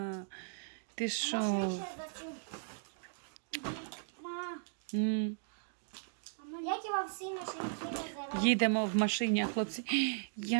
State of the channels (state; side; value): silent; left; digital silence